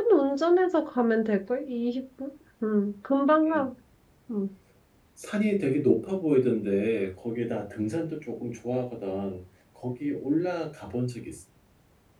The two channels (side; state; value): both; identical; correlation 1.00